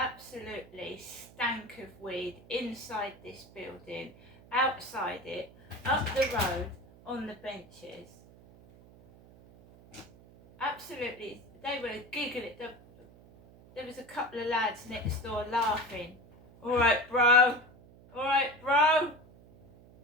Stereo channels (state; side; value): noise; right; hum, 23 dB below the sound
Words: stank of weed inside this building, outside it, up the road, on the benches. Absolutely, they were giggling. There was a couple of lads next door laughing. Alright bro, alright bro.